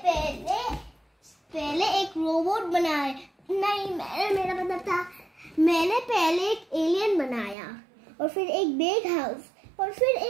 पहले एक रोबोट बनाया। नहीं, मेरा मतलब था मैंने पहले एक एलियन बनाया और फिर एक बिग हाउस और फिर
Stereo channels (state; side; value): drops out; left; at 7.6 s